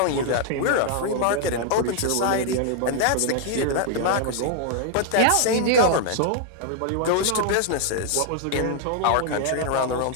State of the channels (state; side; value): different; both; correlation -0.01